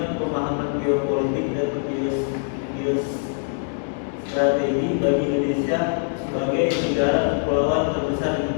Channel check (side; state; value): right; silent; digital silence